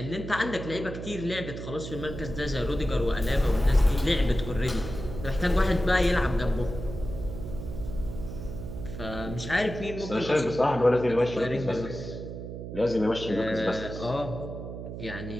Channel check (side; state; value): right; noise; hum, 8 dB below the sound